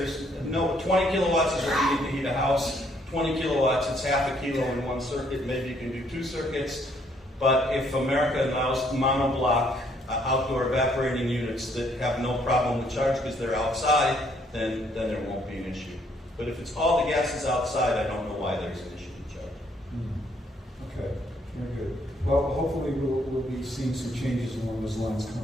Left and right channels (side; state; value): both; normal; correlation 0.67